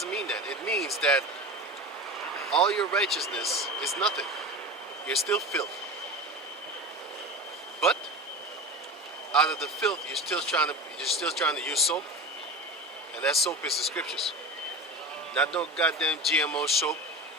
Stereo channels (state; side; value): normal; both; correlation 0.29